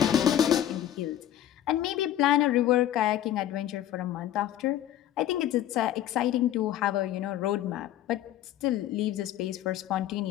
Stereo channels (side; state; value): right; quieter; 12.0 dB